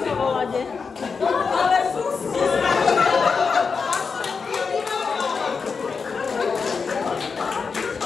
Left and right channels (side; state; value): right; quieter; 5.3 dB